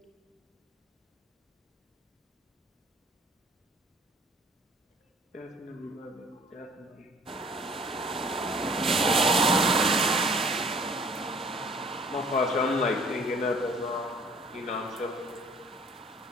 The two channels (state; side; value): normal; both; correlation 0.53